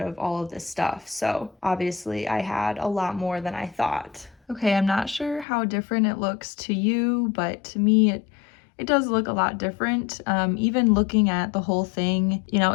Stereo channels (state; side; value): drops out; right; at 5.5 s